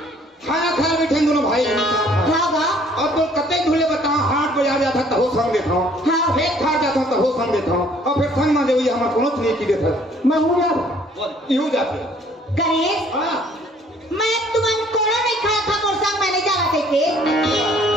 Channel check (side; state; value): both; normal; correlation 0.59